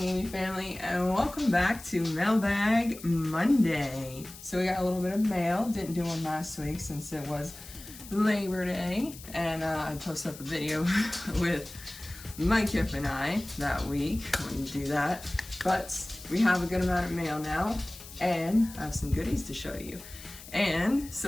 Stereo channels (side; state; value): left; noise; hiss, 16 dB below the sound